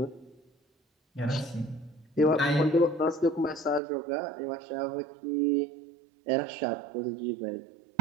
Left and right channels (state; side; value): drops out; left; at 3.8 s